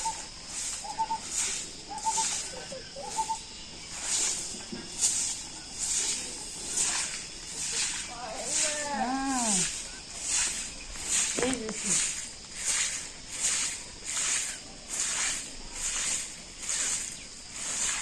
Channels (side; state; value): both; identical; correlation 1.00